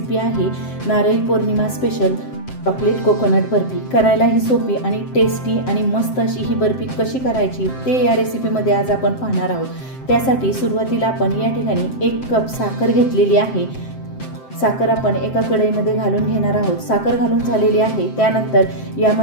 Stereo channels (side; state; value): right; late; 7.7 ms